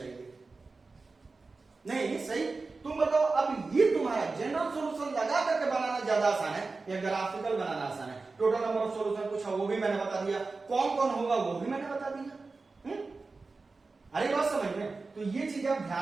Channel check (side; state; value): left; quieter; 3.9 dB